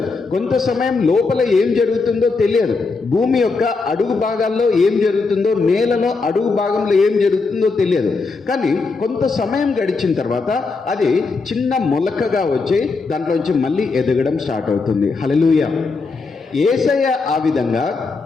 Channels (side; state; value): right; quieter; 4.2 dB